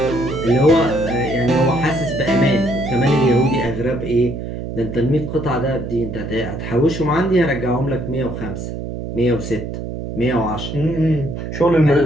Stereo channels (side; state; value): right; noise; hum, 7 dB below the sound